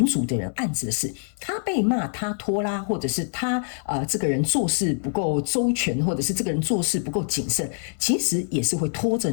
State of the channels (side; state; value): right; silent; digital silence